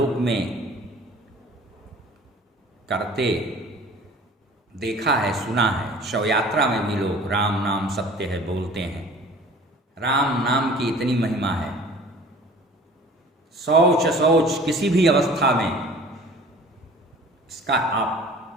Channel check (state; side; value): normal; both; correlation 0.46